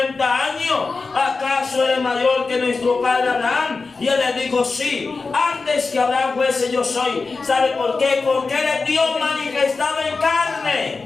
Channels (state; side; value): quieter; right; 4.2 dB